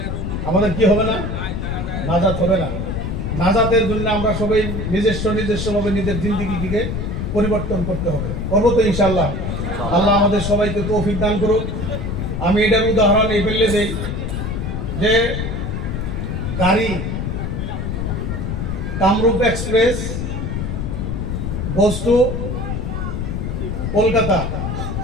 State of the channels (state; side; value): noise; left; rumble, 3 dB below the sound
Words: আমাদের কি হবে না? নাজাত হবে না। নাজাতের জন্য আমরা সবাই নিজস্বভাবে নিজের জিন্দেগিকে পরিবর্তন করতে হবে। করবো তো ইনশাআল্লাহ। আল্লাহ আমাদের সবাইকে তৌফিক দান করুক। আমি এটার উদাহরণ এই ফেললে দেই যে গাড়ি Kamrup express goes to Kolkata,